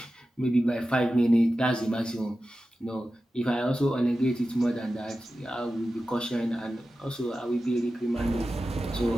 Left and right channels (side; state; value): both; normal; correlation 0.93